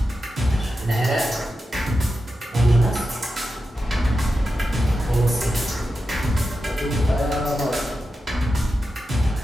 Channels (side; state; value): both; normal; correlation 0.90